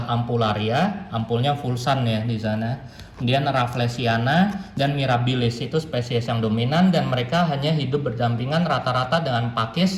Ampularia, ampulnya Fulsan ya di sana. Kemudian Rafflesiana dan Mirabilis, itu spesies yang dominan dan mereka hanya hidup berdampingan rata-rata dengan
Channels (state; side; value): identical; both; correlation 1.00